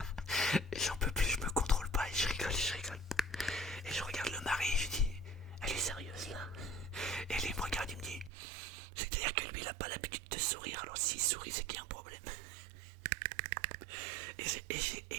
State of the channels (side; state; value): left; drops out; at 8.3 s